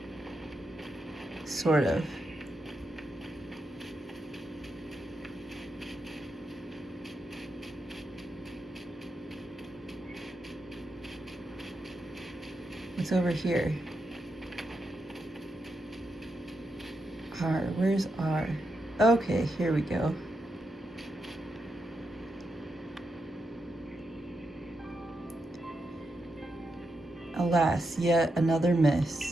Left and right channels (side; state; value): both; normal; correlation 0.85